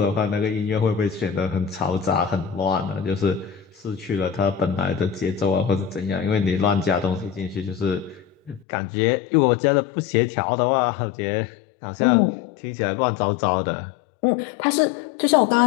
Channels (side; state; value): right; drops out; at 8.7 s